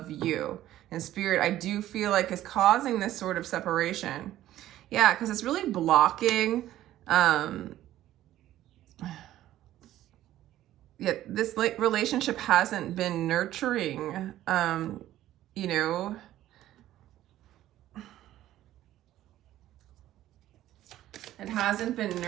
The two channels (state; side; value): quieter; left; 13.6 dB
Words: you. And Spirit, I do feel like is causing this sort of separation. Yeah, because it's really blocking. Yeah, this relationship hasn't been nurturing. You know, it hasn't been